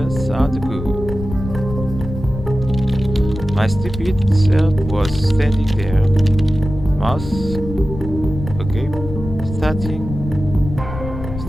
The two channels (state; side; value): noise; left; rumble, 9 dB below the sound